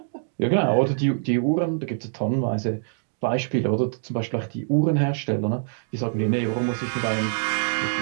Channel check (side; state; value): left; silent; digital silence